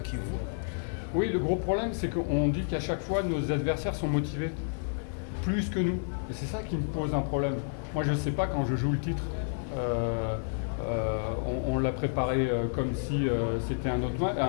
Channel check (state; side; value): silent; right; 58 dB below the other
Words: Kivu. Oui, le gros problème, c'est qu'on dit qu'à chaque fois, nos adversaires sont motivés, plus que nous. Et c'est ça qui me pose un problème. Moi, je ne sais pas quand je joue le titre. On l'a préparé comme si c'était un autre